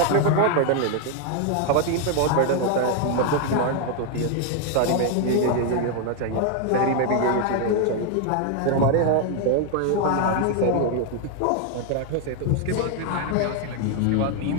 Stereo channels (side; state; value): both; different; correlation 0.00